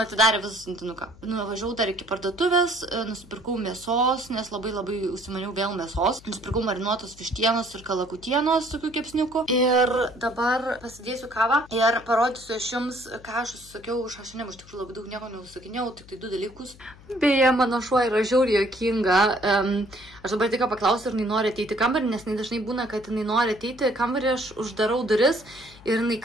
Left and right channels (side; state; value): left; noise; hum, 22 dB below the sound